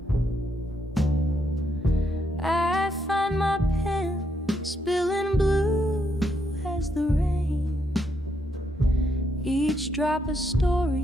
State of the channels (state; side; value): normal; both; correlation 0.77